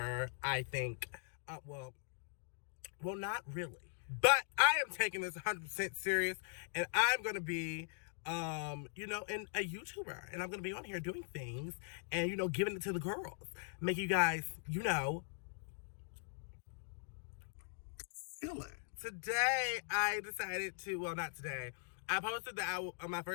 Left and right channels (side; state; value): right; silent; digital silence